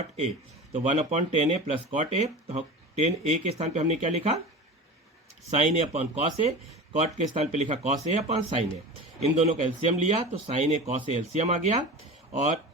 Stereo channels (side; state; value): both; normal; correlation 0.32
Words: ए, तो 1/10a प्लस कॉट ए, तो 10a के स्थान पे हमने क्या लिखा, sine A upon cos A, cot के स्थान पे लिखा cos A upon sine A, इन दोनों का एलसीएम लिया, तो sine A cos A LCM आ गया, और